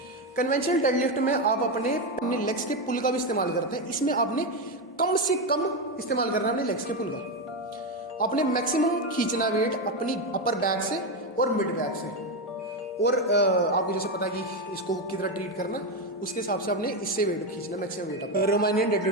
कन्वेंशनल डेडलिफ्ट में आप अपने लेग्स के पुल का भी इस्तेमाल करते हैं, इसमें आपने कम से कम इस्तेमाल करना है अपने लेग्स के पुल का। आपने मैक्सिमम खींचना वेट अपनी अपर बैक से और मिड बैक से, और आपको जैसे पता है कि इसको किस तरह ट्रीट करना, उसके हिसाब से आपने इससे वेट खींचना, मैक्सिमम वेट अपना। रोमानियन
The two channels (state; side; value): normal; both; correlation 0.10